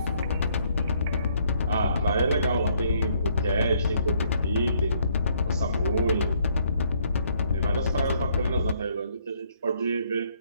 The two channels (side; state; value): both; inverted; correlation -0.67